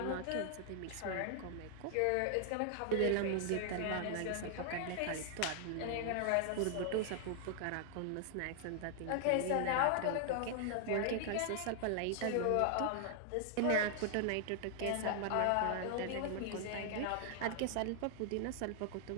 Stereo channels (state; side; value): different; both; correlation 0.00